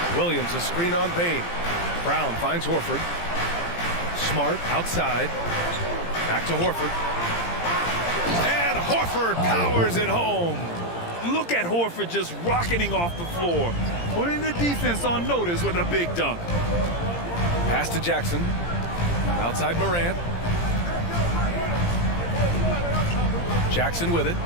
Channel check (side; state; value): right; late; 17 ms